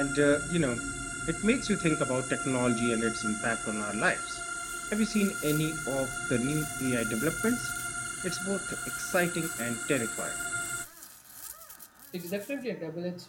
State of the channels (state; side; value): identical; both; correlation 1.00